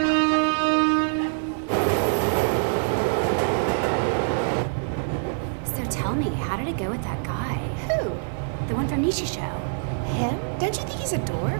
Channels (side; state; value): left; silent; 62 dB below the other